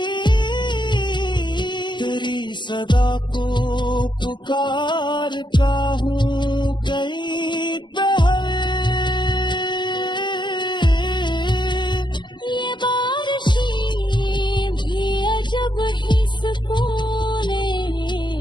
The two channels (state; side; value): late; right; 0.22 ms